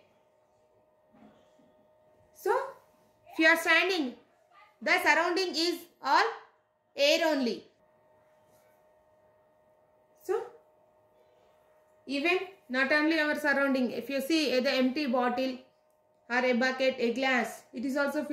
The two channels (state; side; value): identical; both; correlation 1.00